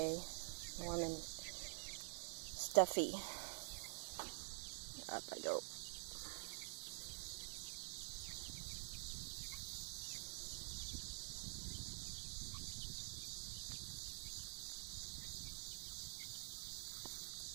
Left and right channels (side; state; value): left; silent; digital silence